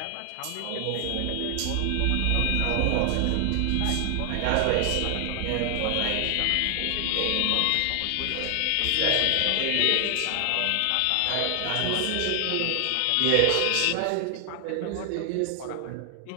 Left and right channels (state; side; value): different; both; correlation 0.00